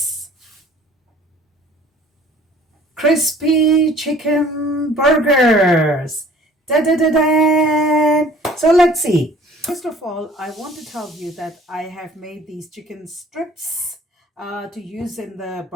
crispy chicken burgers. Da da da da. So let's see. First of all, I want to tell you that I have made these chicken strips to use in the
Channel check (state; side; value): normal; both; correlation 0.51